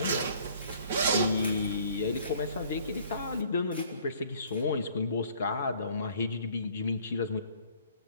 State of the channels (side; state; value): both; inverted; correlation -0.57